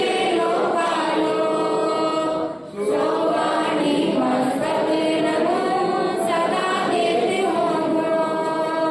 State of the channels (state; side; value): identical; both; correlation 1.00